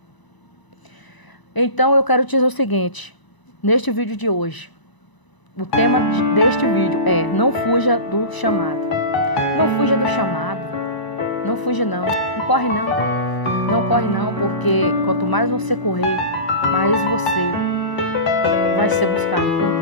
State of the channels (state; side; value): late; right; 1.0 ms